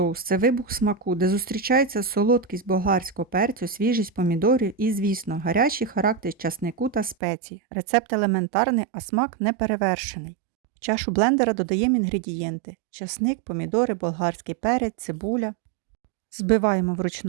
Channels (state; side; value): drops out; left; at 7.2 s